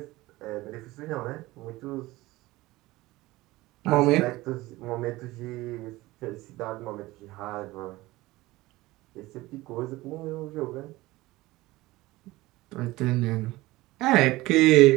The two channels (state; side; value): quieter; left; 19.1 dB